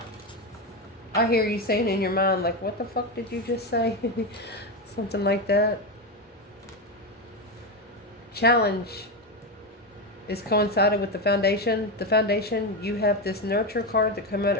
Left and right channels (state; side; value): normal; both; correlation 0.13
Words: I hear you saying in your mind, like, what the fuck did you just say? Something like that. Challenge is coincided with the Foundation. The Foundation, you have this Nurture card that came out